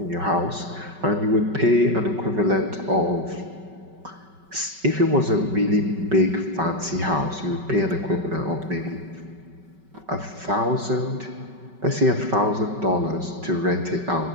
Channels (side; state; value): left; late; 5.3 ms